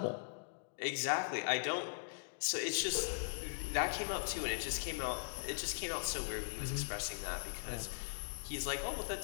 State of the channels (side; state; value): right; silent; digital silence